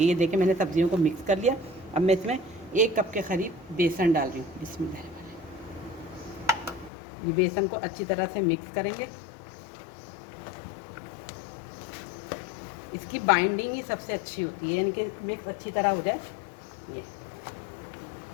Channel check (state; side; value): drops out; right; at 6.9 s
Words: ये देखिए मैंने सब्जियों को मिक्स कर लिया। अब मैं इसमें 1 कप के करीब बेसन डाल रही हूँ। बिस्मिल्लाह। ये बेसन को अच्छी तरह से मिक्स करेंगे। इसकी बाइंडिंग ही सबसे अच्छी होती है, यानी कि मिक्स अच्छी तरह हो जाए। ये